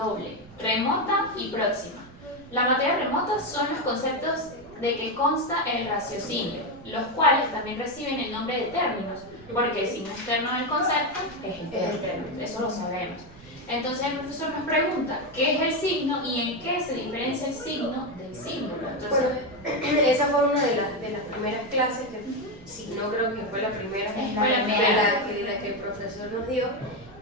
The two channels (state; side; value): noise; right; rumble, 21 dB below the sound